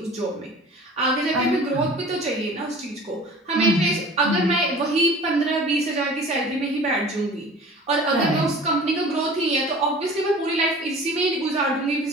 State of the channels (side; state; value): both; normal; correlation 0.43